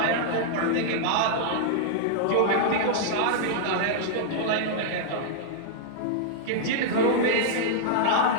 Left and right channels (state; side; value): different; both; correlation -0.01